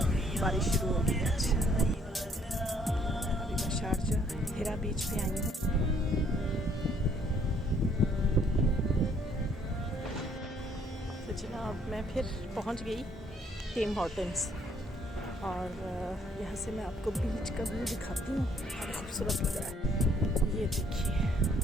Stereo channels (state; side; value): normal; both; correlation 0.65